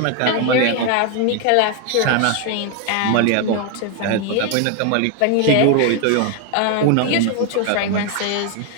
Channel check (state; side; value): different; both; correlation 0.01